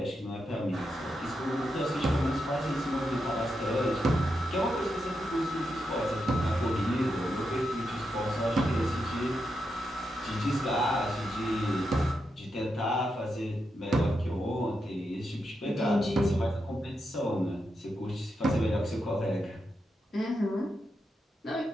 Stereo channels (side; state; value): both; normal; correlation 0.85